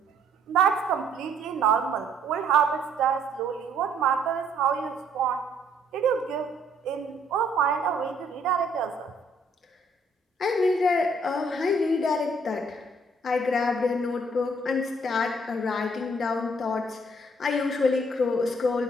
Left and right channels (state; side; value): normal; both; correlation 0.64